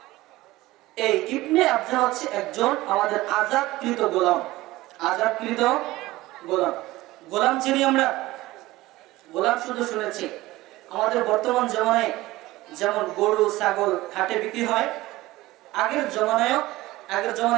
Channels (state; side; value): quieter; left; 18.2 dB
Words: এই ইবনে আবজা হচ্ছে একজন আমাদের আযাদকৃত গোলাম। আযাদকৃত গোলাম। গোলাম চিনি আমরা? গোলাম শুধু শুনেছি। আমাদের বর্তমান জমানায় যেমন গরু ছাগল হাটে বিক্রি হয়, আগের